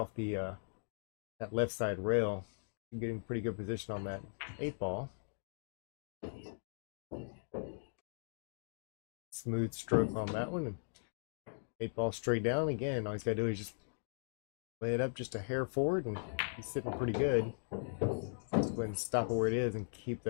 the that left side rail. Getting pretty good position on that 8 ball. Smooth stroke on that one. 8 ball straight down. Again, all he's got to do is just lay it up just a hair forward, and he's sitting pretty good. Just go ahead and stop it where it is and keep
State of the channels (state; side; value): silent; right; digital silence